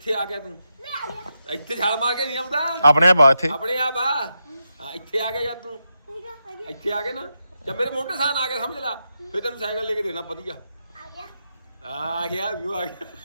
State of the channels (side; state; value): both; inverted; correlation -0.86